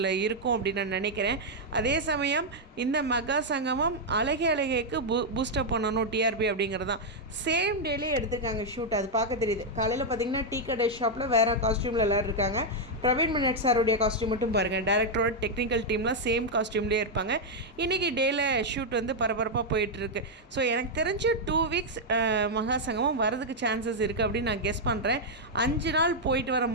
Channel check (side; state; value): both; normal; correlation -0.02